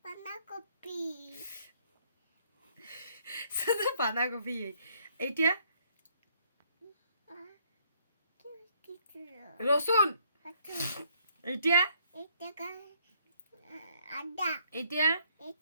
বাঁধাকপি শুধু বাঁধাকপি এটা কিছু রসুন এটা এটা আদা এটা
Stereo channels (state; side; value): inverted; both; correlation -0.67